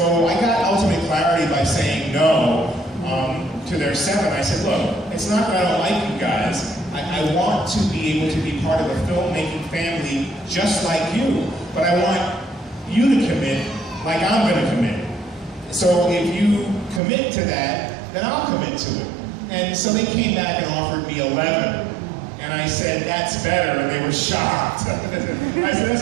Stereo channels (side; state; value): left; drops out; at 17.0 s